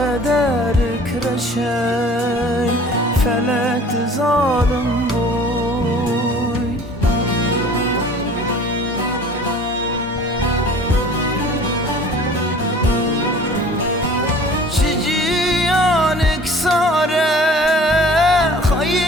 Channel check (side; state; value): both; normal; correlation 0.47